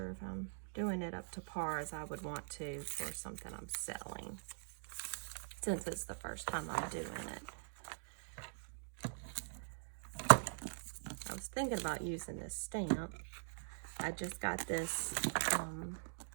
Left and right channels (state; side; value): silent; left; digital silence